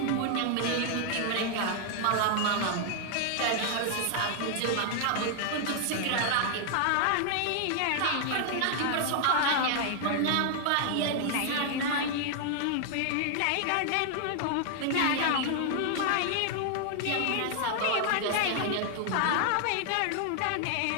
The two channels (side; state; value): both; different; correlation 0.00